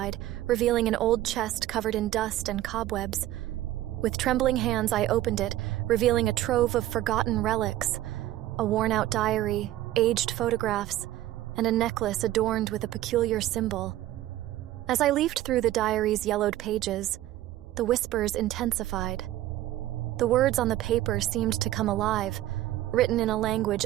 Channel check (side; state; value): left; quieter; 14.6 dB